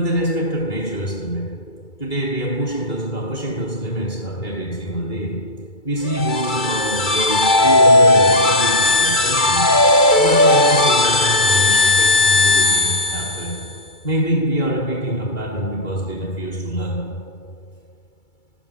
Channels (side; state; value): right; late; 2.3 ms